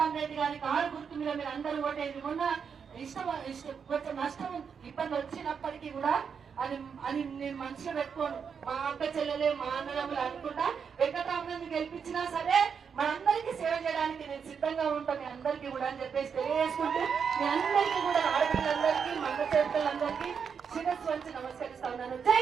గారి కారు గుర్తు మీద మీరు అందరూ ఓటేది. మొన్న కొంచెం నష్టం ఇబ్బంది వచ్చినప్పటికీ కూడా అది నేను మనసులో పెట్టుకోను. మా అక్క చెల్లెలే, మా అన్నదమ్ములు అనుకుంటా వెంకటరామరెడ్డి గెలిపించినా సరే మనందరికీ సేవ చేయడానికి నేను సిద్ధంగా ఉంటాను, మీ అందరికీ కూడా అని చెప్పేసి తెలియజేసుకుంటూ, మీ అందరికీ కూడా ఆడపిల్లలందరికీ, మగ చేతులందరికీ శిరస్సు వంచి నమస్కరిస్తా ఉన్నాను.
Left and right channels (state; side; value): quieter; left; 6.6 dB